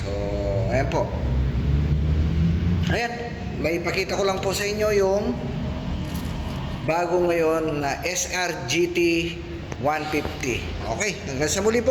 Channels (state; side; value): identical; both; correlation 1.00